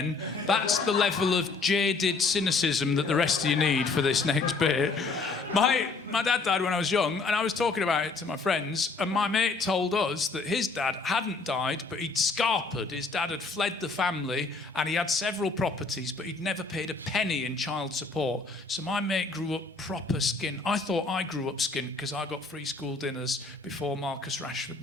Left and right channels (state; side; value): quieter; right; 4.0 dB